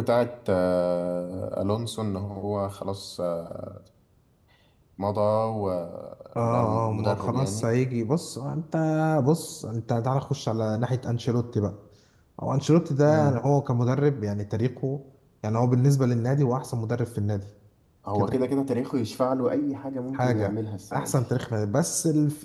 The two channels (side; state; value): both; identical; correlation 1.00